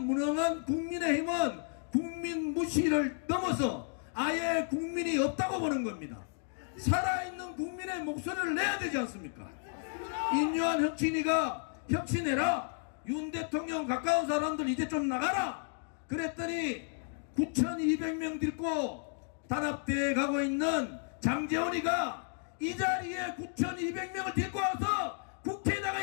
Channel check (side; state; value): right; silent; 56 dB below the other